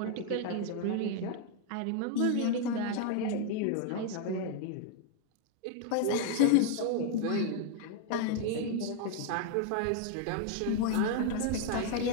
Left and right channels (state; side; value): different; both; correlation 0.00